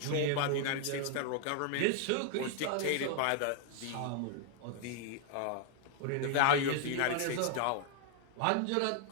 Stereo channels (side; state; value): both; different; correlation 0.00